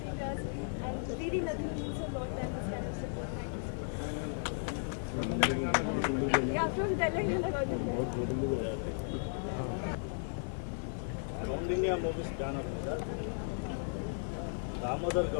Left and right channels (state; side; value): silent; right; 54 dB below the other